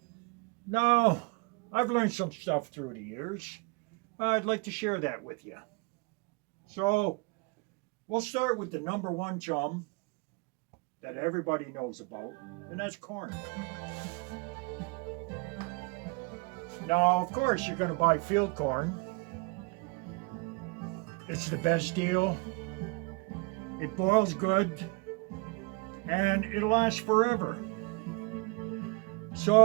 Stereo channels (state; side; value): quieter; left; 28.5 dB